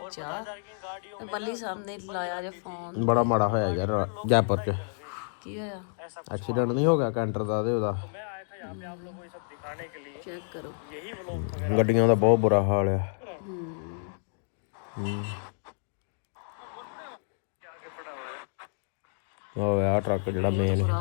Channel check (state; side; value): silent; right; digital silence